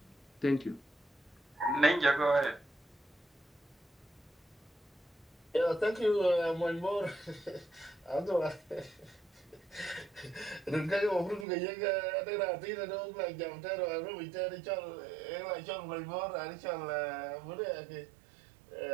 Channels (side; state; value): left; drops out; at 11.5 s